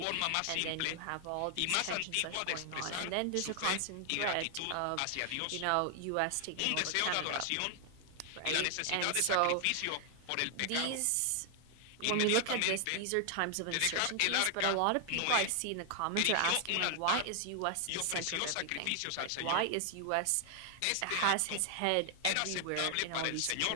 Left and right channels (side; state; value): both; different; correlation 0.00